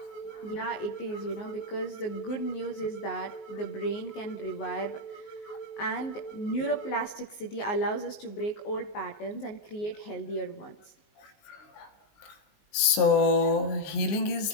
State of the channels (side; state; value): right; late; 19 ms